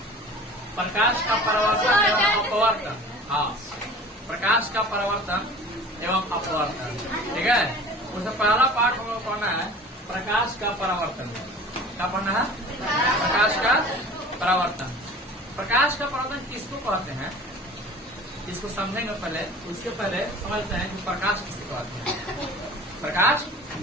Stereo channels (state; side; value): normal; both; correlation 0.42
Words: प्रकाश का परावर्तन एवं अपवर्तन। हाँ, प्रकाश का परावर्तन एवं अपवर्तन। ठीक है, उसमें पहला पार्ट हम लोग पढ़ना है प्रकाश का परावर्तन। क्या पढ़ना है? प्रकाश का परावर्तन। प्रकाश का परावर्तन किसको कहते हैं, इसको समझेंगे पहले। उसके पहले समझते हैं कि प्रकाश किसे कहते हैं। प्रकाश